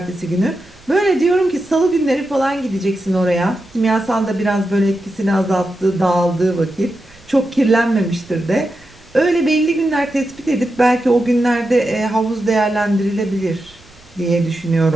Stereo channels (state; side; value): noise; right; rumble, 28 dB below the sound